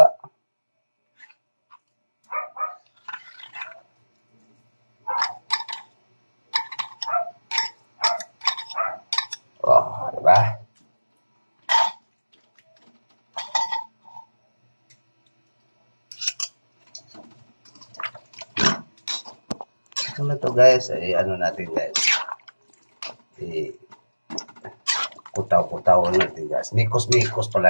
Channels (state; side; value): inverted; both; correlation -1.00